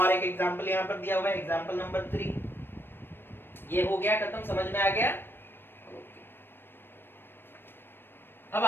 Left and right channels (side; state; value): right; late; 0.10 ms